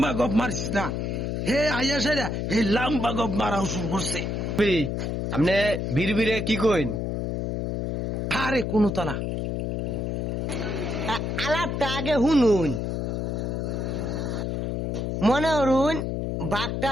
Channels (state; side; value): noise; left; hum, 1 dB below the sound